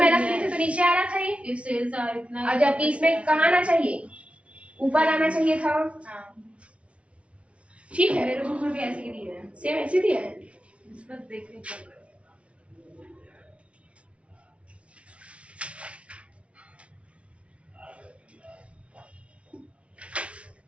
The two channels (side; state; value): left; late; 0.062 ms